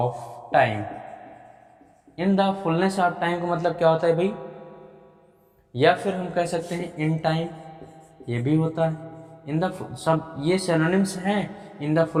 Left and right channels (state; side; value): identical; both; correlation 1.00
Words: time. In the fullness of time का मतलब क्या होता है भाई? या फिर हम कह सकते हैं इन टाइम, ये भी होता है। इन द सब ये सिनोनिम्स हैं, in the